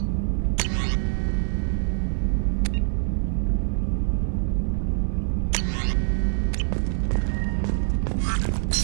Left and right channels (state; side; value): silent; left; 59 dB below the other